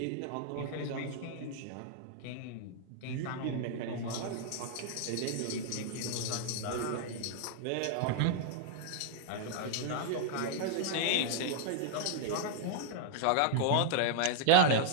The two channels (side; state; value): both; different; correlation 0.00